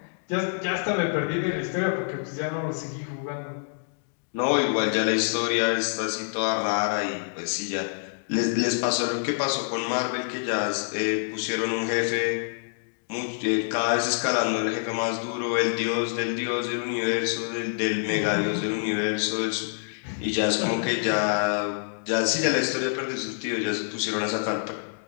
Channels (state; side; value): silent; right; digital silence